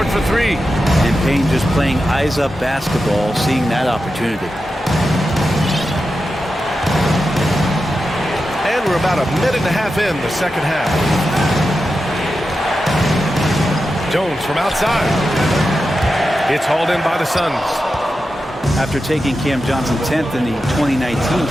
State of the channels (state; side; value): normal; both; correlation 0.90